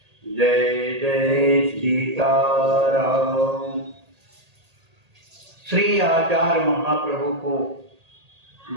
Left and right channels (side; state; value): left; late; 1.8 ms